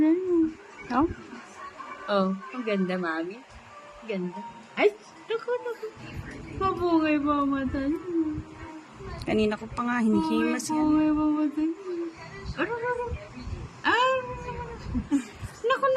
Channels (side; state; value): both; identical; correlation 1.00